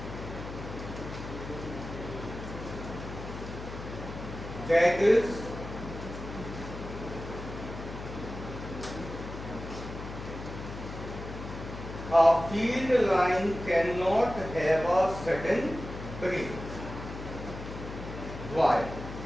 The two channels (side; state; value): left; noise; hum, 9 dB below the sound